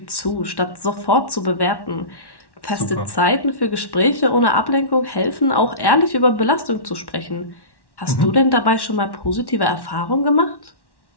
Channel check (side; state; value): right; late; 1.1 ms